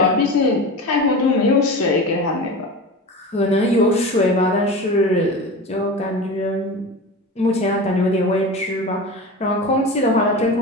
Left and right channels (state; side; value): normal; both; correlation 0.29